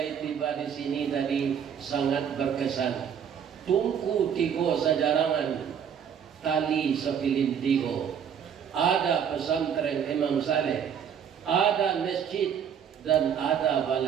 tiba di sini tadi sangat berkesan. Tungku tigo sajarangan, tali sepilin tigo. Ada pesantren Imam Saleh, ada masjid, dan ada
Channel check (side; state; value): left; quieter; 8.0 dB